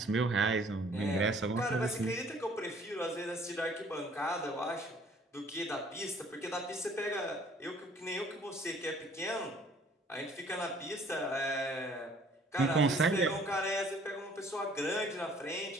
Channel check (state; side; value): normal; both; correlation 0.57